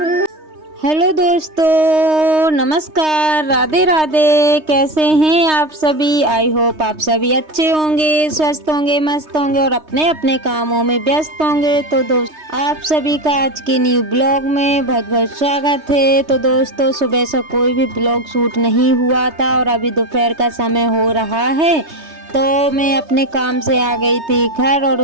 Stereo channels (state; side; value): late; left; 3.2 ms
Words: दोस्तों, नमस्कार, राधे राधे। कैसे हैं आप सभी? आई होप आप सभी अच्छे होंगे, स्वस्थ होंगे, मस्त होंगे और अपने अपने कामों में व्यस्त होंगे। तो दोस्त आप सभी का आज के न्यू ब्लॉग में बहुत बहुत स्वागत है। तो दोस्तों, सुबह से कोई भी ब्लॉग शूट नहीं हुआ था और अभी दोपहर का समय हो रहा है। तो मैं अपने काम से आ गई थी घर और